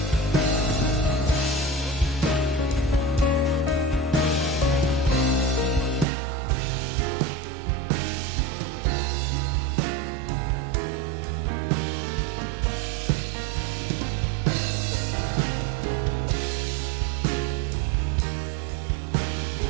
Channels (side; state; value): left; drops out; at 6.1 s